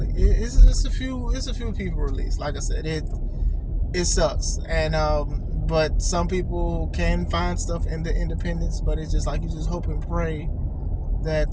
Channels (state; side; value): identical; both; correlation 1.00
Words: It's a few people released. Like I said, it sucks, and but some people can find stuff in the independents. But it's just like you just hope and pray that